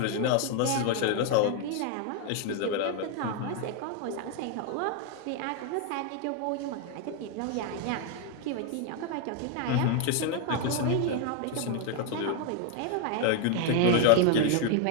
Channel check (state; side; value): different; both; correlation 0.00